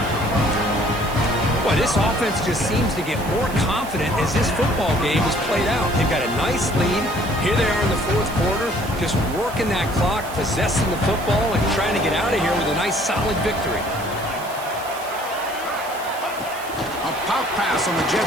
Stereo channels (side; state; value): right; noise; hiss, 16 dB below the sound